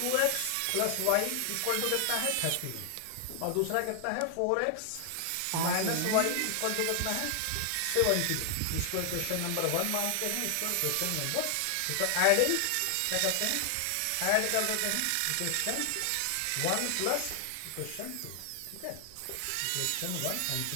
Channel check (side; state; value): both; different; correlation 0.00